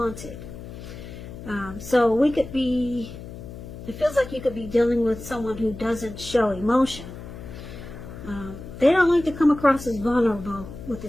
So we could be, it feels like you could be dealing with someone who doesn't show emotion. They don't like to come across as vulnerable with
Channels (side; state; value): left; noise; hum, 12 dB below the sound